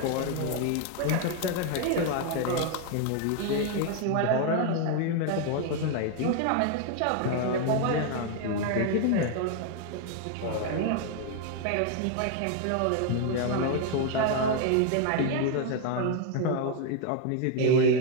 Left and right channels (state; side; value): different; both; correlation 0.00